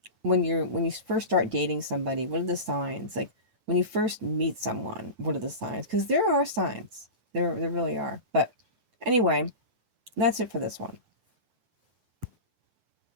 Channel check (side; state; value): left; late; 9.0 ms